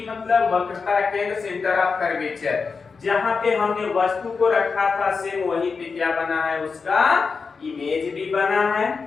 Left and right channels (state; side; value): quieter; right; 5.0 dB